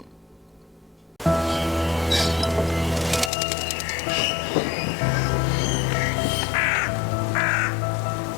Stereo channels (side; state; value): right; drops out; at 3.3 s